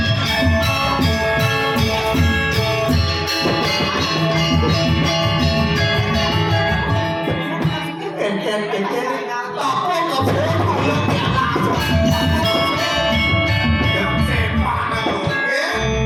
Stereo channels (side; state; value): both; identical; correlation 1.00